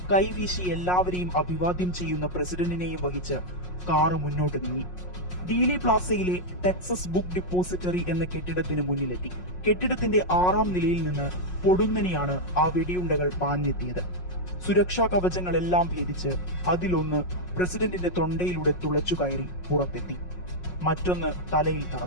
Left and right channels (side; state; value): right; late; 5.5 ms